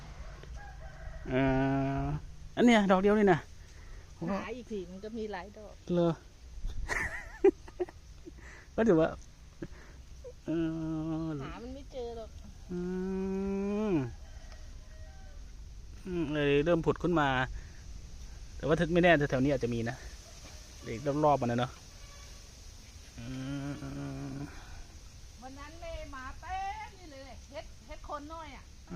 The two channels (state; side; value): identical; both; correlation 1.00